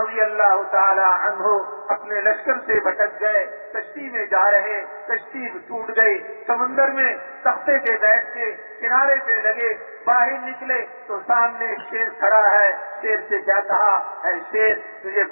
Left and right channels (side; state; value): both; inverted; correlation -1.00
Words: اللہ تعالی عنہ اپنے لشکر سے بھٹک گئے، کشتی میں جا رہے، کشتی ٹوٹ گئی، سمندر میں تختے پہ بیٹھ کے کنارے پہ لگے، باہر نکلے تو سامنے ایک شیر کھڑا ہے۔ شیر سے کیا کہا؟ اے شیر، تجھے